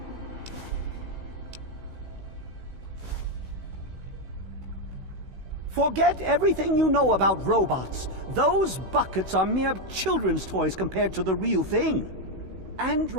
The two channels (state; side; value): late; left; 16 ms